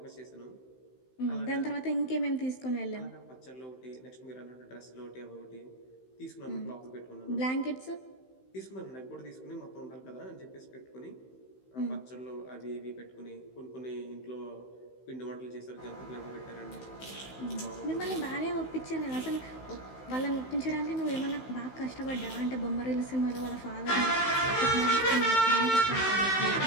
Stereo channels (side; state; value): right; late; 16 ms